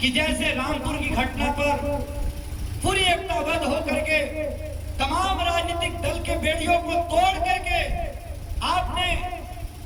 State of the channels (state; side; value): identical; both; correlation 1.00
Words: जैसे रामपुर की घटना पर पूरी एकताबद्ध होकर के तमाम राजनीतिक दल के बेड़ियों को तोड़ करके आपने